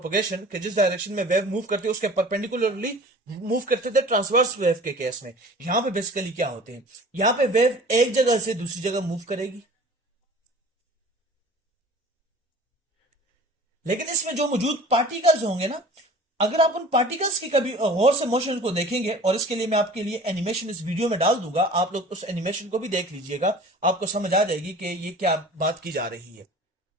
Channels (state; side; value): normal; both; correlation 0.44